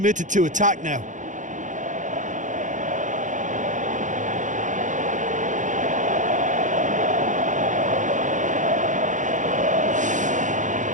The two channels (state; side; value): late; left; 0.36 ms